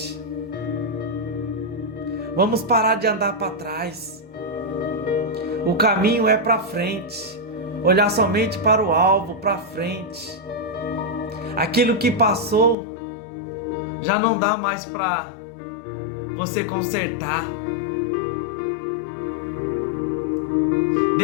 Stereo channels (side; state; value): right; drops out; at 12.8 s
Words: Vamos parar de andar para trás. O caminho é para frente. Olhar somente para o alvo, para frente. Aquilo que passou já não dá mais para você consertar.